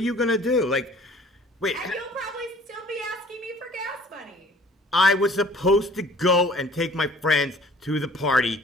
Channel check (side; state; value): both; normal; correlation 0.51